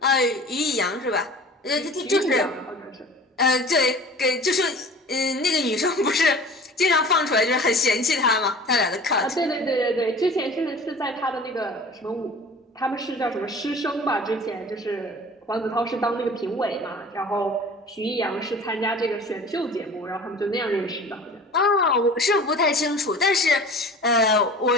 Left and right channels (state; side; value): normal; both; correlation 0.42